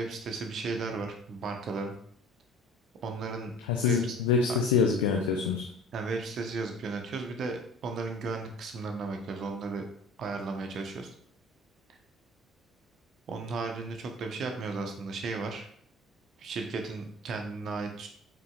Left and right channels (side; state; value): both; normal; correlation 0.43